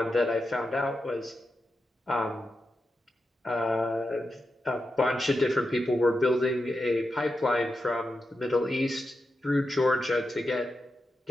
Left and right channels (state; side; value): normal; both; correlation 0.88